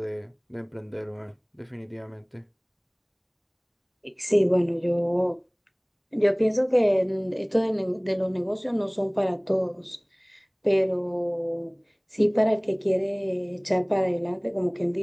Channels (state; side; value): identical; both; correlation 1.00